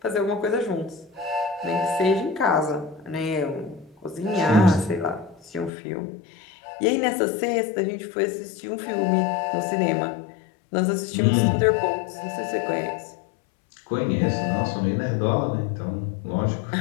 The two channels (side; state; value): right; drops out; at 5.7 s